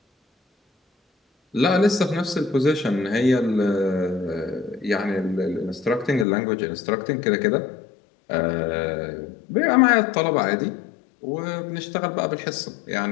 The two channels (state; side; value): drops out; right; at 6.2 s